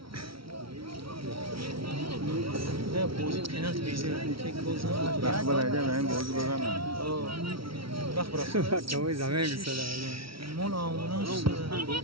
بازی پنالتی بیزه یک گل زدن وقت برای من بازی بزنم وقت برای Acabou exame que مال آموناش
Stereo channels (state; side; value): late; left; 0.75 ms